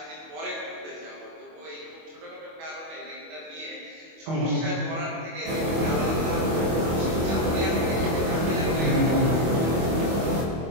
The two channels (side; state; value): left; late; 25 ms